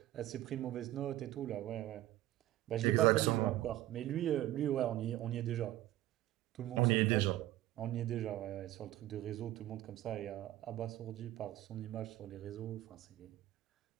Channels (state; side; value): quieter; left; 14.9 dB